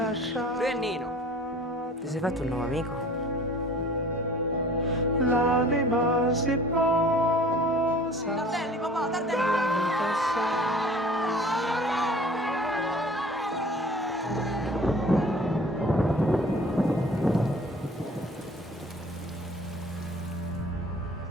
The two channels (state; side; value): normal; both; correlation 0.48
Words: Lui è Nino. Ti sei fatto un nuovo amico? L'anima si posa. Tardelli, papà, Tardelli!